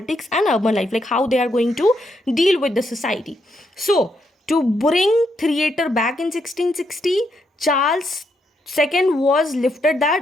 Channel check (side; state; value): both; normal; correlation 0.78